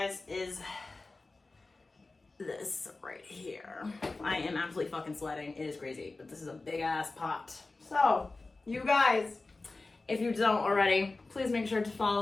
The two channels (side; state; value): right; quieter; 3.4 dB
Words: is this right here. I am absolutely fucking sweating. It is crazy, but this is a big ass pot. So, you guys, if you don't already, please make sure to